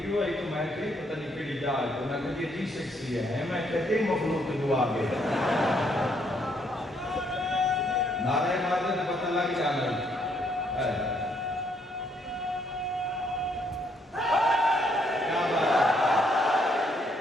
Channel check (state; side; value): normal; both; correlation 0.71